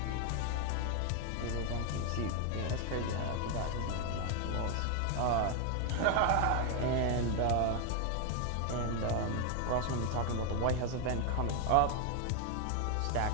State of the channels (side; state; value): both; different; correlation 0.01